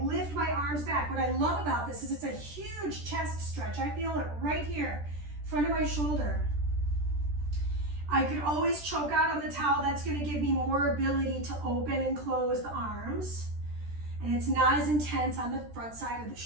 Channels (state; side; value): late; left; 13 ms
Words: lift my arms back. What I love about this is it's a huge chest stretch. I feel it right here, front of my shoulder. I could always choke out on the towel. That's going to give me more ability to open and close the arms. And it's not as intense on the front side of the